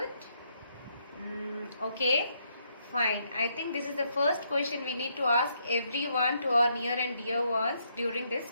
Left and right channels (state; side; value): inverted; both; correlation -0.75